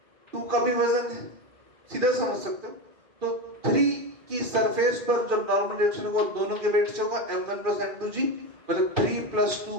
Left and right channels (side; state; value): left; late; 2.5 ms